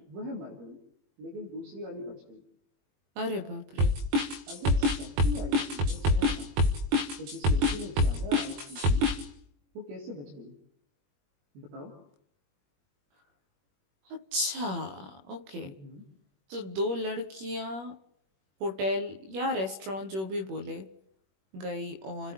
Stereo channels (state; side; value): late; left; 21 ms